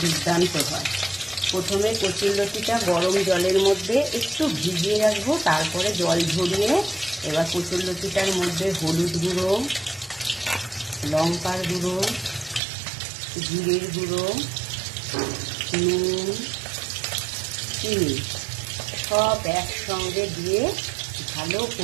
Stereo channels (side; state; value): left; drops out; at 12.6 s